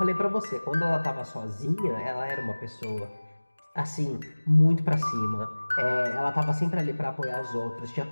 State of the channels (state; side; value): inverted; both; correlation -1.00